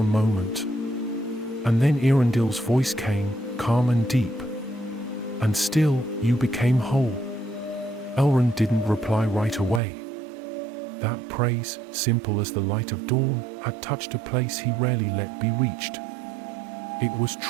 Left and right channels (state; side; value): drops out; left; at 9.8 s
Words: moment. And then Eärendil's voice came, calm and deep. "And still, you became whole." Elrond didn't reply right away. That praise, simple as the light of dawn, had touched a place he rarely let be reached. It was